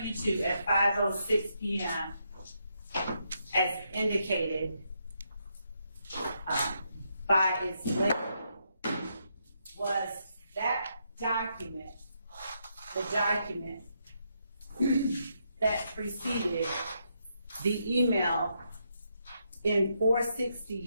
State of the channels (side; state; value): both; inverted; correlation -0.79